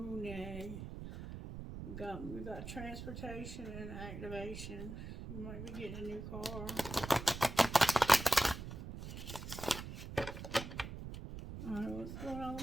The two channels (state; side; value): noise; right; rumble, 9 dB below the sound